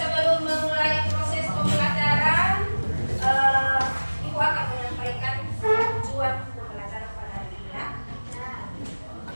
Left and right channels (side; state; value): both; inverted; correlation -1.00